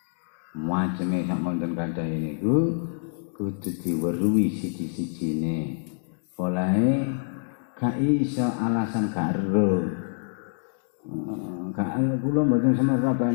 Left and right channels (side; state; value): right; silent; digital silence